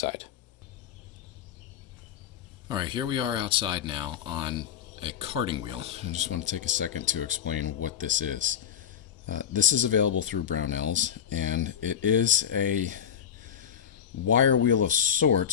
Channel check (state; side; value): quieter; right; 8.7 dB